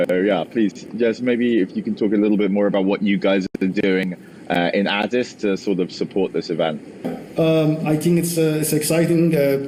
yeah, please, just maybe if you can talk a little bit more about what you guys are doing in Addis to sort of support this event. I think it's exciting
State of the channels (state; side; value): identical; both; correlation 1.00